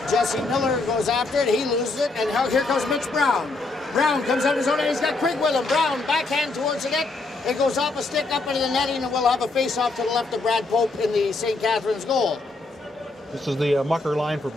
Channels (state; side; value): quieter; right; 3.4 dB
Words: Jesse Miller goes after it. He loses it, and here comes Mitch Brown. Brown comes out of his own end. He's got Quigg with him. Brown backhand towards the net. It goes off a stick up into the netting, and we'll have a face-off to the left of Brad Pope in the St. Catharines goal. This is the mucker line for